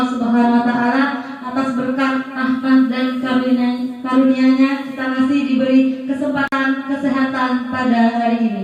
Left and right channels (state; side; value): identical; both; correlation 1.00